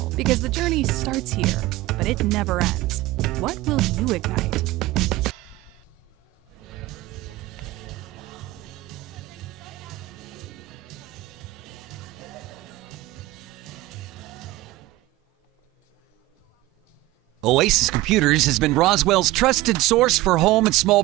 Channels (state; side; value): quieter; left; 18.3 dB